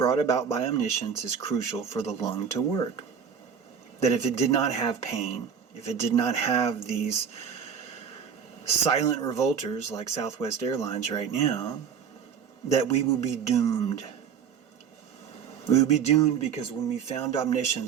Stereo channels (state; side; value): quieter; left; 7.3 dB